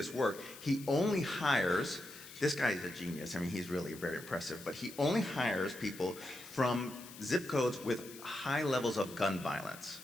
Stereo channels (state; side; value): noise; left; hiss, 16 dB below the sound